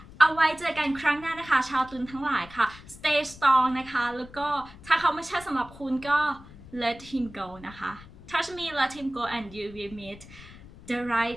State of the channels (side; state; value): left; noise; rumble, 19 dB below the sound